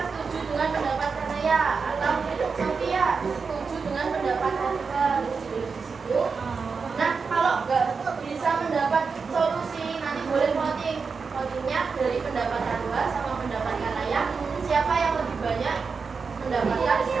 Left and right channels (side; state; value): left; quieter; 5.1 dB